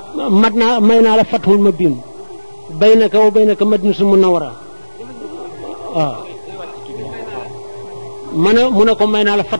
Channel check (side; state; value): both; inverted; correlation -1.00